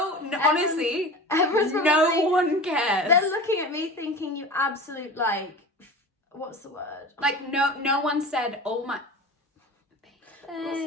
honestly, everyone's no probably- one cares. They're looking at me thinking you absolute, like, what's the word? Like, no one said, oh my... What's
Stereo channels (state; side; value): normal; both; correlation 0.34